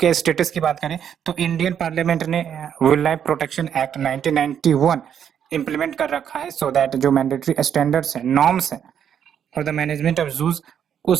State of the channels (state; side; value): quieter; left; 8.7 dB